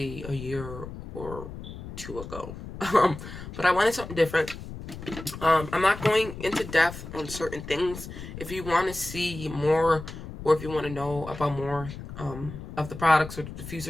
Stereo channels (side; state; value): left; noise; rumble, 11 dB below the sound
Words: a year or two ago. But I wanted something different. I'm not going into depth on certain things. If you want to see more or if you want to know about more of the products or the